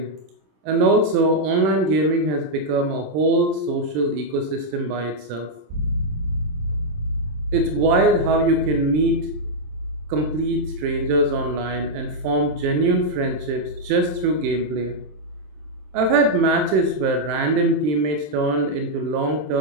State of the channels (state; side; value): late; left; 26 ms